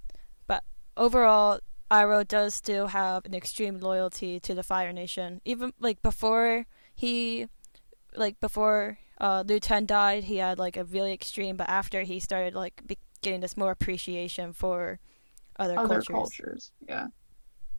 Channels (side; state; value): both; inverted; correlation -1.00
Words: But overall, Iroh does still have an extreme loyalty to the Fire Nation. Even like before Liu Ten died, he had like a really extreme. But after he started like getting this more appreciation for other Other cultures. cultures, yeah.